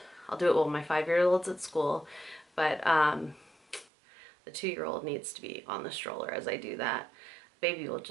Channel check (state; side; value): drops out; left; at 3.9 s